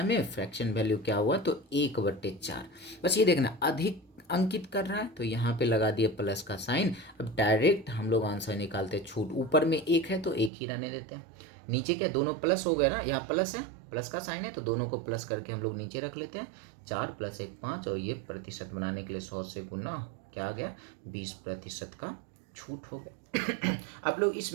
में, फ्रैक्शन वैल्यू क्या हुआ तो 1 बटे 4। बस ये देखना अधिक अंकित कर रहा है तो यहाँ पे लगा दिया प्लस का साइन। अब डायरेक्ट हम लोग आंसर निकालते हैं, छूट ऊपर में 1 है तो 1 ही रहने देते हैं, नीचे क्या दोनों प्लस हो गया ना, यहाँ प्लस है, प्लस का साइन है तो दोनों को प्लस करके हम लोग नीचे रख लेते हैं, 4 + 1 5, और ये प्रतिशत बनाने के लिए 100 से गुना क्या आ गया 20% का छूट हो गया। आप लोग इस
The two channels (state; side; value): drops out; left; at 10.5 s